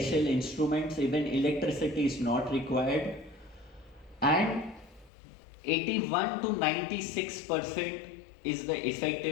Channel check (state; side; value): drops out; right; at 5.1 s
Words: instruments, even electricity is not required. And 81 to 96% is the